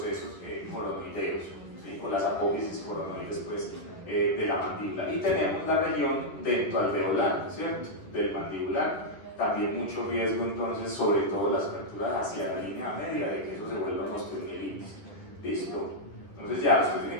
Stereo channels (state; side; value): late; right; 11 ms